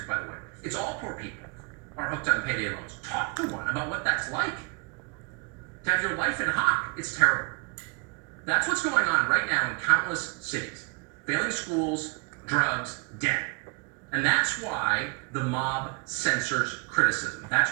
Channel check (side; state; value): left; quieter; 34.8 dB